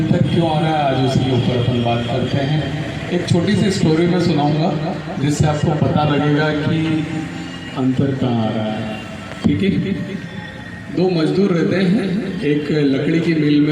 क्यों आ रहा है, आज उसके ऊपर अपन बात करते हैं। एक छोटी सी स्टोरी में सुनाऊंगा जिससे आपको पता लगेगा कि अंतर कहाँ आ रहा है। ठीक है, 2 मजदूर रहते हैं, एक लकड़ी की मिल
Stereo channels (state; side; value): identical; both; correlation 1.00